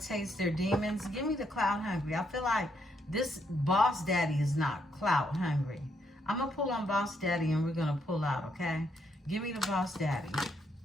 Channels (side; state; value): both; normal; correlation 0.75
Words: their demons. Give me the clout hungry. I feel like this boss daddy is not clout hungry. I'm going to pull on boss daddy and we're going to pull out, okay? Give me the boss daddy.